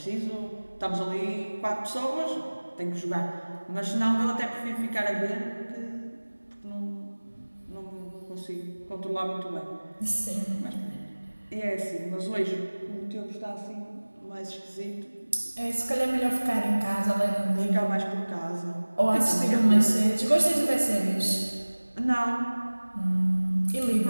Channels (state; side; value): inverted; both; correlation -1.00